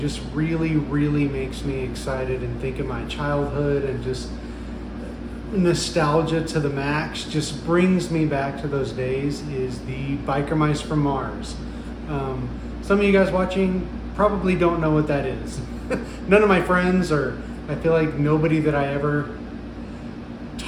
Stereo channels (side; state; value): both; identical; correlation 1.00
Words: really makes me excited and think of my childhood and just nostalgia to the max, just brings me back to those days, is the Biker Mice from Mars. Some of you guys watching probably don't know what that is. None of my friends, or I feel like nobody that I ever